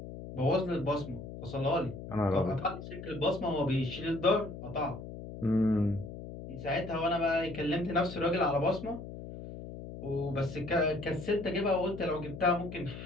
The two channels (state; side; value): noise; left; hum, 11 dB below the sound